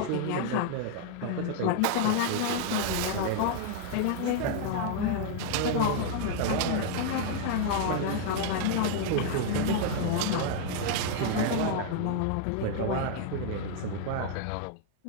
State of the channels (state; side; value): different; both; correlation 0.00